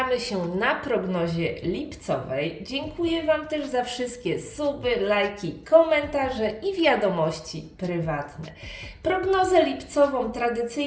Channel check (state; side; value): identical; both; correlation 1.00